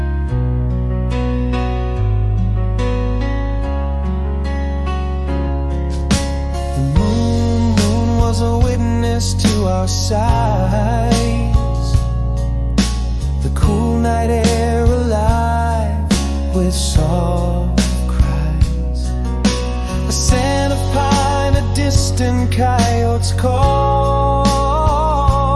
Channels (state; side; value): identical; both; correlation 1.00